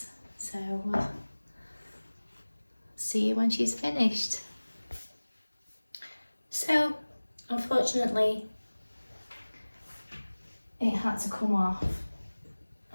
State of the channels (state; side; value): inverted; both; correlation -1.00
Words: So see you when she's finished. So unfortunately it had to come off.